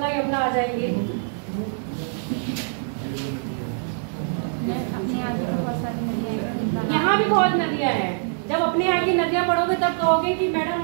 यमुना आ जाएंगे। अपने यहाँ भी बहुत सारी नदियाँ हैं। यहाँ भी बहुत नदियाँ हैं। जब अपने यहाँ की नदियाँ पढ़ोगे तब कहोगे कि मैडम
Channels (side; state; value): left; silent; digital silence